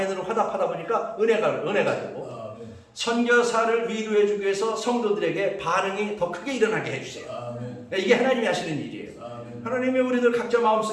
화답하다 보니까 은혜가 되고, 선교사를 위로해주기 위해서 성도들에게 반응이 더 크게 일어나게 해주세요. 이게 하나님이 하시는 일이에요. 하나님이 우리들 각자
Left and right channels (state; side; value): identical; both; correlation 1.00